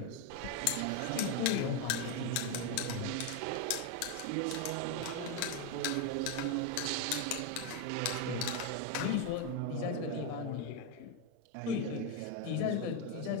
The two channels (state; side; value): different; both; correlation 0.02